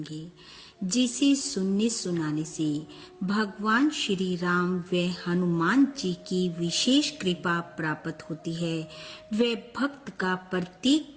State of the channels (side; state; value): both; identical; correlation 1.00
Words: जिसे सुनने सुनाने से भगवान श्री राम व हनुमान जी की विशेष कृपा प्राप्त होती है व भक्त का प्रत्येक